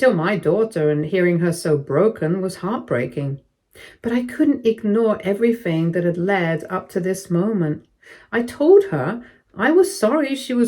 my daughter, and hearing her so broken was heartbreaking. But I couldn't ignore everything that had led up to this moment. I told her I was sorry she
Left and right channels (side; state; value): both; identical; correlation 1.00